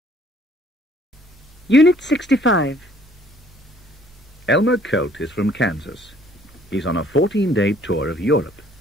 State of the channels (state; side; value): normal; both; correlation 0.60